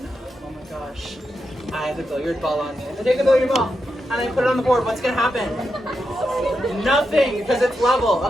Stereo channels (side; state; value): both; normal; correlation 0.86